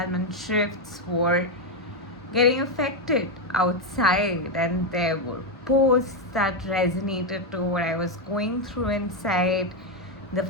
and shifts were getting affected outside, and there were posts that resonated to what I was going through inside, the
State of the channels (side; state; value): both; normal; correlation 0.05